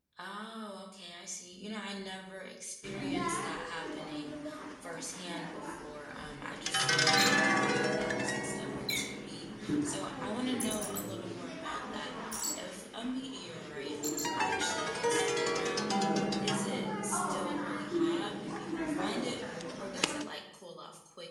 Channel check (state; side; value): identical; both; correlation 1.00